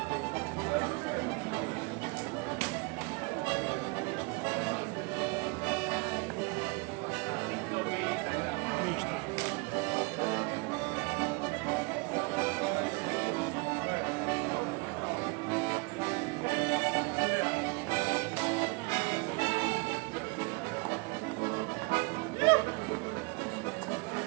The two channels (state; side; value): quieter; left; 29.4 dB